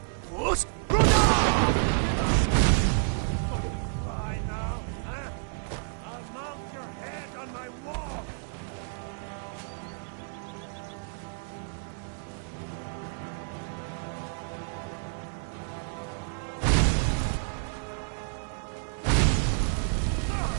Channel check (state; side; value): silent; left; 58 dB below the other